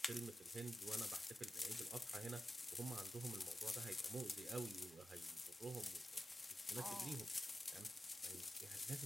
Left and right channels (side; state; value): both; normal; correlation 0.92